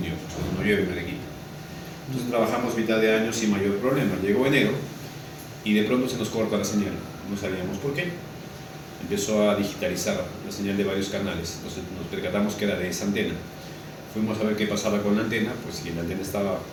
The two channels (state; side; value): identical; both; correlation 1.00